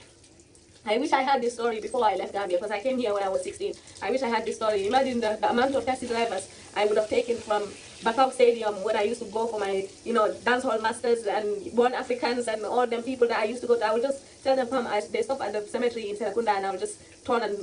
I wish I had this story before I left Gambia, because I came here when I was 16. I wish I had this story. Imagine the amount of taxi drivers I would have taken from Bakau Stadium when I used to go for my, you know, dancehall masters and Born Africans and all them people that I used to go to. I would just tell them, come, they stop at the cemetery in Serakunda, and I would just turn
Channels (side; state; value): both; identical; correlation 1.00